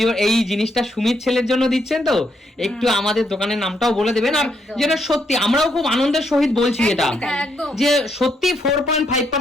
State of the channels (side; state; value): both; normal; correlation 0.76